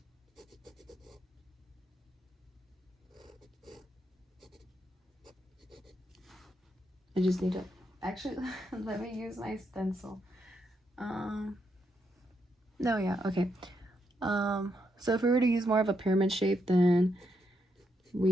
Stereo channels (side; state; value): both; normal; correlation 0.80